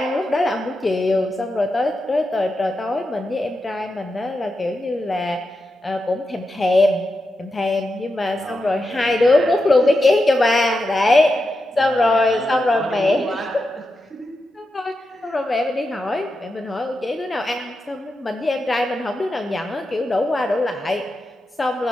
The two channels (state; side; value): normal; both; correlation 0.88